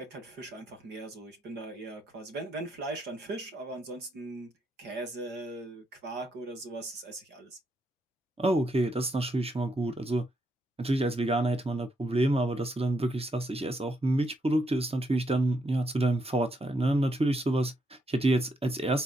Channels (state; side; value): normal; both; correlation 0.78